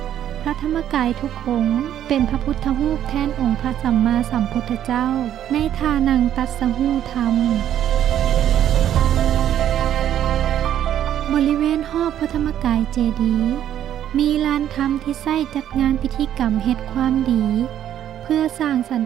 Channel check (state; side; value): quieter; left; 10.8 dB